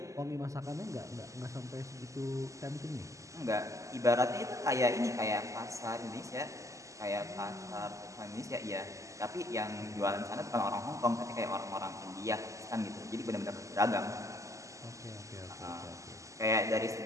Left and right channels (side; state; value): left; late; 0.16 ms